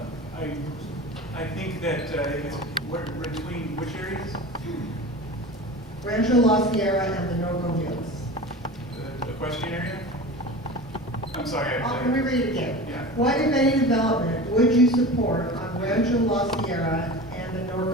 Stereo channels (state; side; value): normal; both; correlation 0.33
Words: I think that it's between which areas? Rancho La Sierra and the Norco Hills. The equestrian area? I'm sorry. Let me read it again. Yeah. What, if any, development would you support on Rancho La Sierra and the